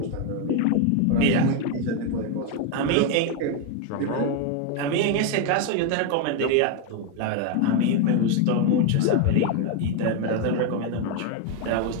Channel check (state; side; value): different; both; correlation 0.02